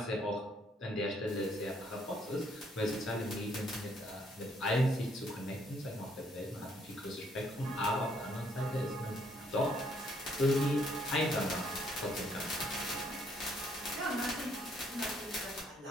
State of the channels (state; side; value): normal; both; correlation 0.68